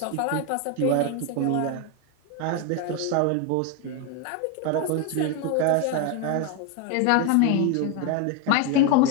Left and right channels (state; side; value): different; both; correlation 0.02